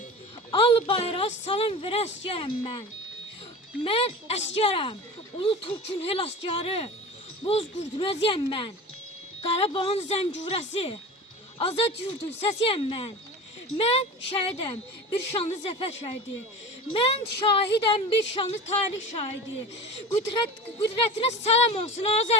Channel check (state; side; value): normal; both; correlation 0.34